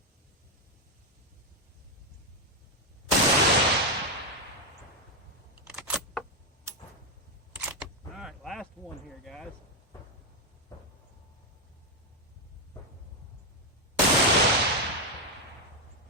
all right, last one here, guys.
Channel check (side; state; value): both; normal; correlation 0.04